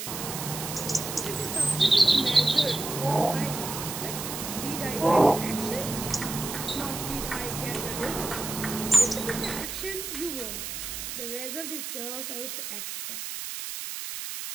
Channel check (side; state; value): right; noise; hiss, 6 dB below the sound